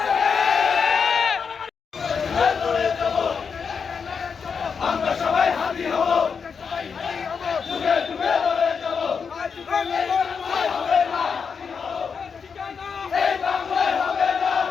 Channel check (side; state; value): right; quieter; 6.0 dB